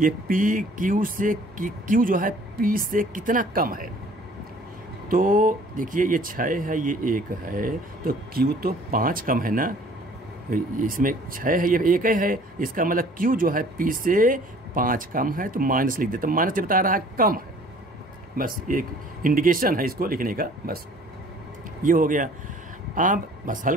पी क्यू से, क्यू जो है पी से कितना कम है। तो देखिए ये 6 है, ये 1 है, तो क्यू तो 5 कम है ना, इसमें 6 है, ये 1 है, इसका मतलब क्यू जो है पी से 5 कम है, तो माइनस लिख देते, तो माइनस बता रहा है कम है, बस एक इंडिकेशन है इसको लिखने का, बस ये हो गया। अब बस हल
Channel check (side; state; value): both; normal; correlation 0.53